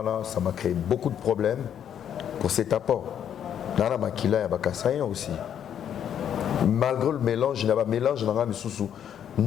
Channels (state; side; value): quieter; right; 9.3 dB